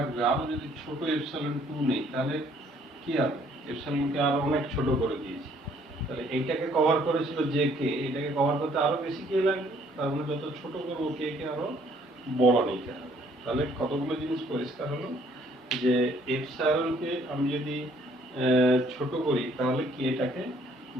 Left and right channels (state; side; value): normal; both; correlation 0.62